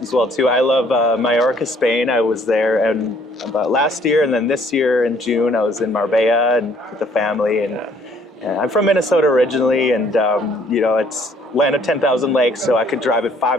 as well too. I love Mallorca, Spain. I was there and about last year, and then this year in June I was in Marbella and with the family. And I'm from Minnesota originally, and it's land of 10,000 lakes, so I could drive it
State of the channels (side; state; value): both; normal; correlation 0.62